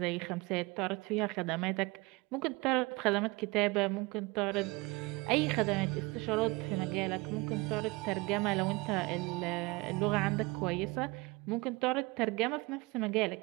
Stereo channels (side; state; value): left; quieter; 24.5 dB